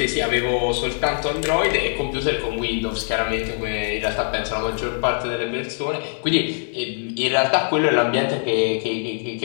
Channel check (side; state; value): right; silent; 64 dB below the other